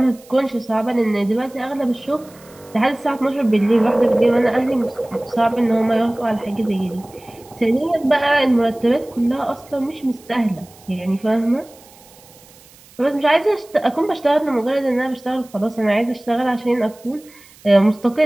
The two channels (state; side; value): noise; right; hiss, 25 dB below the sound